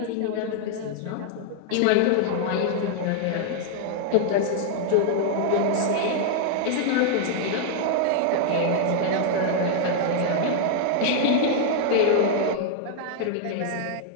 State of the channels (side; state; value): both; different; correlation 0.00